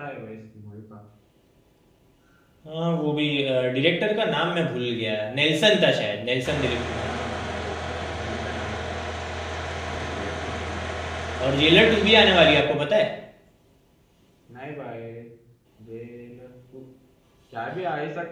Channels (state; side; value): identical; both; correlation 1.00